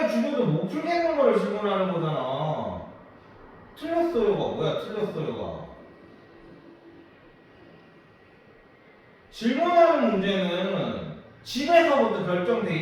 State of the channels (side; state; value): both; identical; correlation 1.00